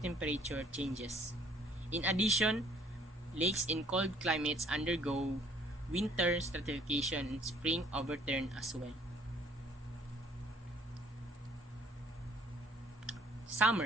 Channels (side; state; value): both; normal; correlation 0.60